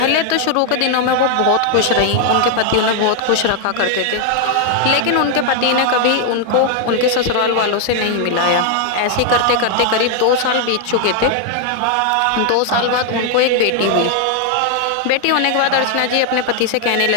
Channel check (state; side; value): different; both; correlation 0.00